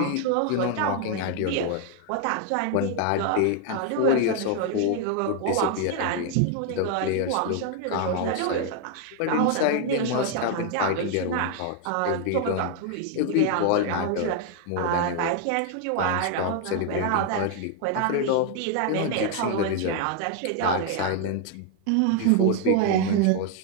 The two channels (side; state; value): both; different; correlation 0.00